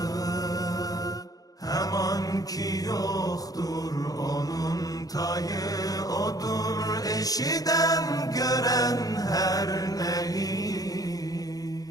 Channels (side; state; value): right; late; 0.18 ms